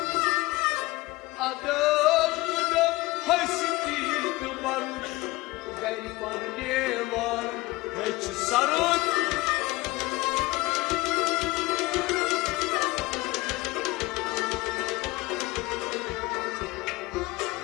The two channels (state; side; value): quieter; right; 21.2 dB